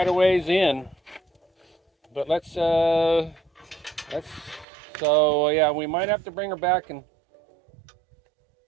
a ways in. But so yeah, we might have to bring her back and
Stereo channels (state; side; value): drops out; left; at 4.7 s